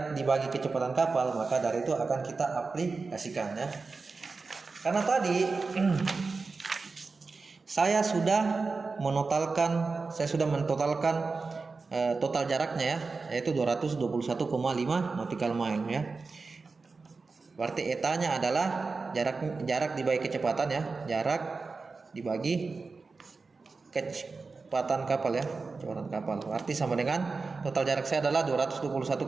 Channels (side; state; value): left; quieter; 4.2 dB